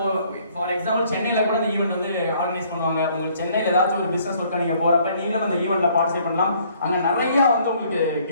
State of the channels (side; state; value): both; inverted; correlation -0.62